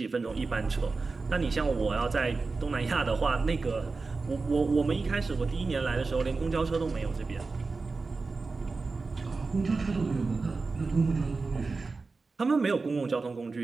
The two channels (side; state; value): left; quieter; 4.0 dB